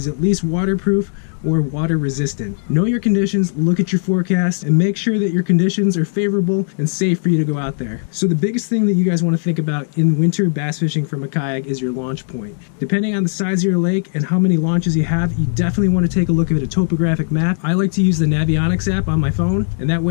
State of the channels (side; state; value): right; silent; digital silence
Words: at least waterproof or water resistant. Know your conditions, look at your forecast, and make sure that your conditions are favorable and safe for you to go out there. So the biggest thing that you guys want to think about in winter bass fishing from a kayak is your launch point. Depending on the size of your lake and how many launches you have, you definitely want to take a look at a topographic map. I like to use the Navionics app on my phone, and that